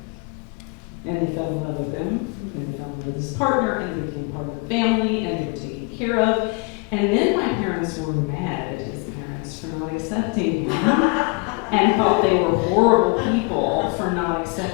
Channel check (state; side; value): quieter; right; 29.0 dB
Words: And they fell in love with him, and they fell in love with his partner, and they became part of the family, and they were taken care of. And then my parents were mad at his parents for not accepting him, and thought they were horrible people for not